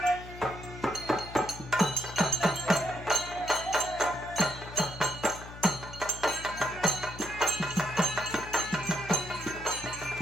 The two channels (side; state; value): left; noise; hum, 14 dB below the sound